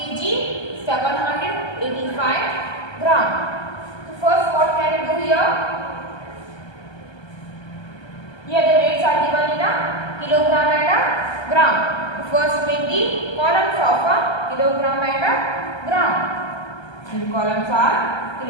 785 gram. So first what can you do here? Here the weights are given in a kilogram and a gram. So first make the columns of a kilogram and a gram. And the columns are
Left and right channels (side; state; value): right; late; 1.3 ms